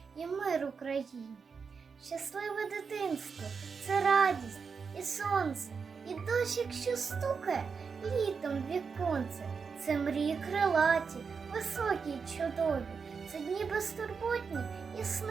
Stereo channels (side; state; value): left; quieter; 5.6 dB